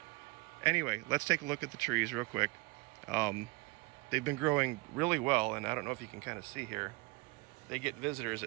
anyway, let's take a look at the trees real quick. They've been growing really well, and I don't know if you can kind of see here. They get visitors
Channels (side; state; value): left; quieter; 24.1 dB